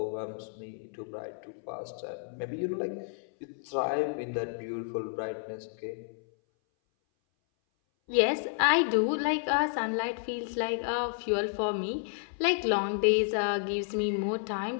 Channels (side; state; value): right; silent; 57 dB below the other